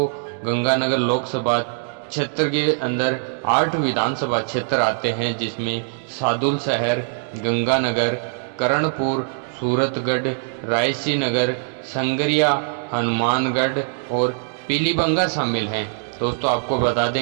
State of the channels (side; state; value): left; silent; 64 dB below the other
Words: गंगानगर लोकसभा क्षेत्र के अंदर 8 विधानसभा क्षेत्र आते हैं, जिसमें सादुल शहर, गंगानगर, करणपुर, सूरतगढ़, रायसीनगर, संगरिया, हनुमानगढ़ और पीलीबंगा शामिल हैं। दोस्तों, आपको बता